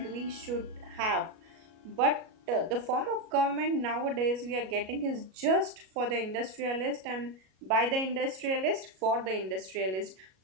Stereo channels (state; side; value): late; left; 37 ms